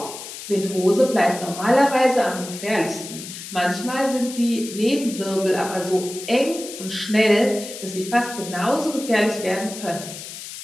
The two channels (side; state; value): left; noise; hiss, 11 dB below the sound